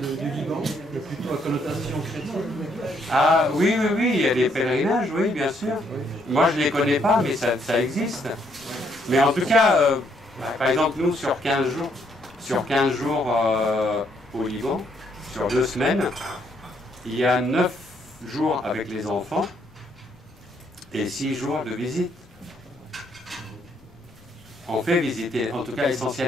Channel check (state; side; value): noise; left; rumble, 28 dB below the sound